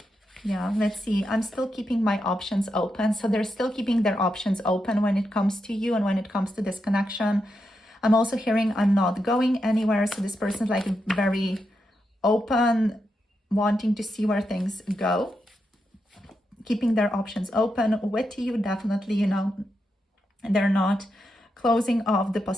Yeah, let's see. I'm still keeping my options open. So they're still keeping their options open when it comes to you and when it comes to this connection. I'm also hearing I'm not going anywhere. So this person's like very open, wanting to see where things go, keeping their options open with you, definitely, you know, they're not closing off the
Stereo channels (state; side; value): normal; both; correlation 0.85